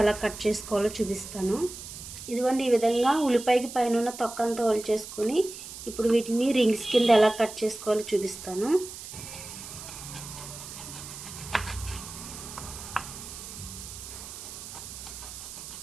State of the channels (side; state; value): right; noise; hiss, 12 dB below the sound